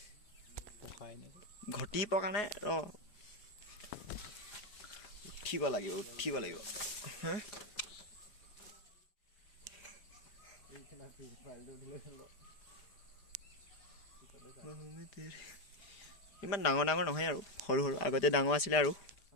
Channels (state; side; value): late; right; 5.0 ms